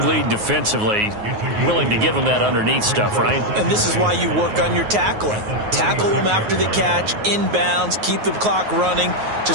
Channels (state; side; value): late; left; 9.4 ms